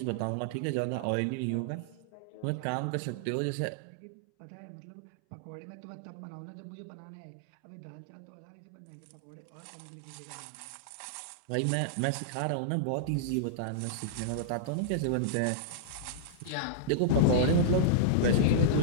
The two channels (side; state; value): both; different; correlation -0.02